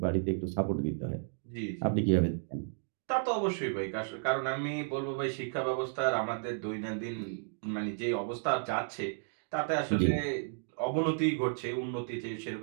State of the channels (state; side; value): silent; left; digital silence